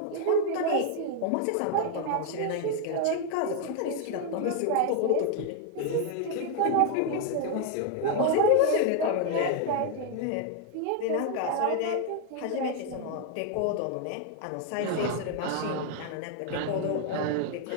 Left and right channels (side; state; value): both; different; correlation 0.00